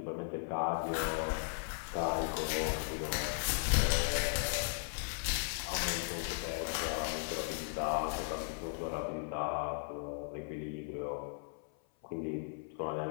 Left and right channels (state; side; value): silent; right; 53 dB below the other